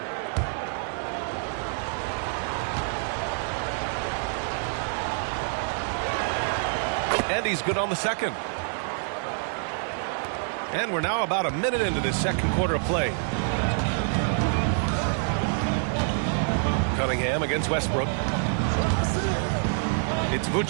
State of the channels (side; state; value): left; silent; 60 dB below the other